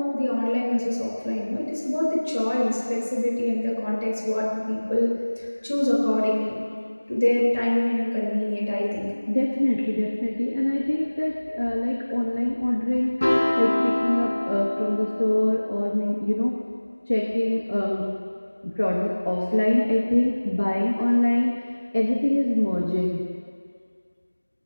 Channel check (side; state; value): both; inverted; correlation -1.00